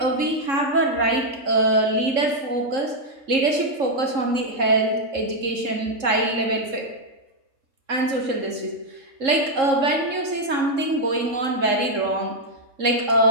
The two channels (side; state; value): left; late; 3.7 ms